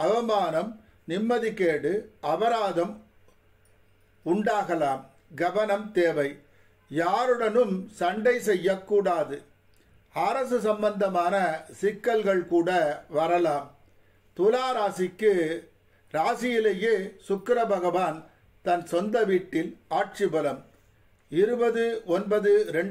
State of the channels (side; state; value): both; identical; correlation 1.00